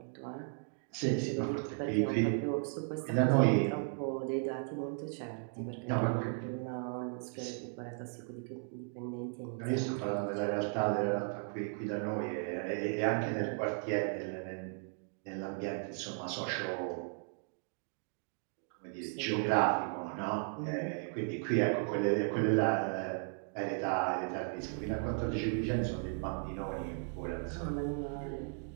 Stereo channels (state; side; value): silent; left; 54 dB below the other